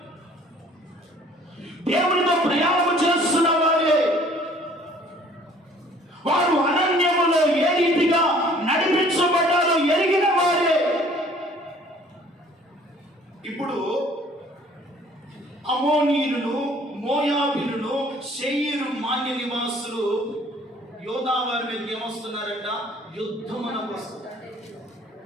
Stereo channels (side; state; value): both; normal; correlation 0.55